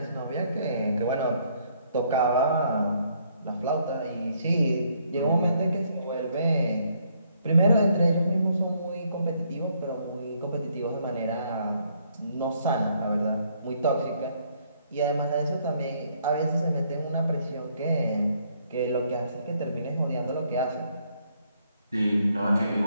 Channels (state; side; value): inverted; both; correlation -0.69